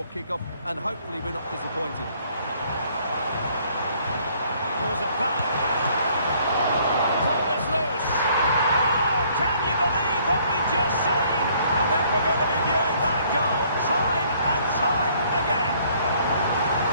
kick-off, and hopefully we're not disappointed. Pulls it back. Ball is loose. Oh, can you believe what we've just seen? I think we're going to be viewing that goal time and time again.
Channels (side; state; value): both; inverted; correlation -0.62